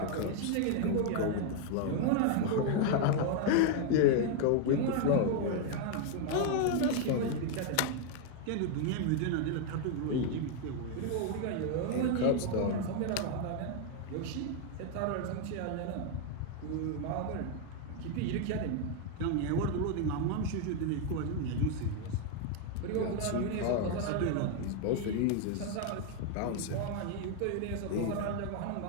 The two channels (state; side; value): different; both; correlation 0.01